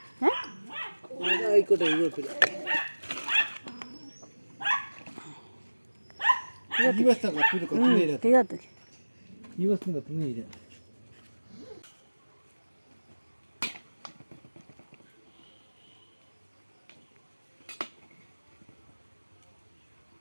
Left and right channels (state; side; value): inverted; both; correlation -1.00